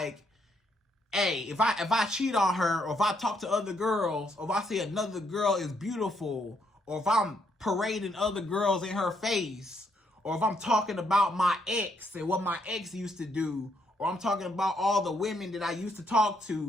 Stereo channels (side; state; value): both; normal; correlation 0.73